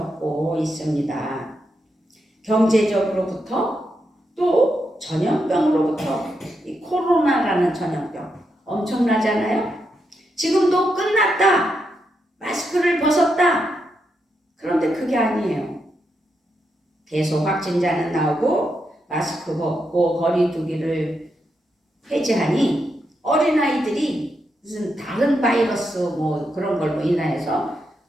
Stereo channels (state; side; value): normal; both; correlation 0.83